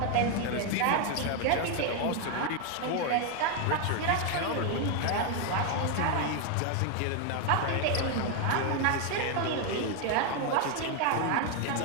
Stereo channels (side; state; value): both; different; correlation 0.01